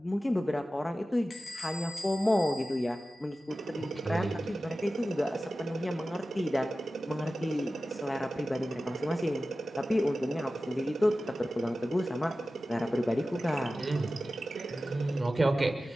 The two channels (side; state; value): both; normal; correlation 0.95